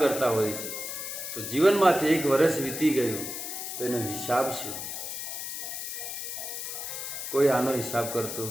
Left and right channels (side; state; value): left; noise; hiss, 6 dB below the sound